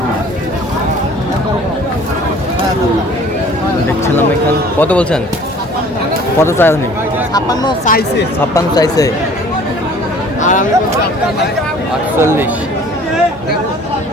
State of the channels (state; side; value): normal; both; correlation 0.50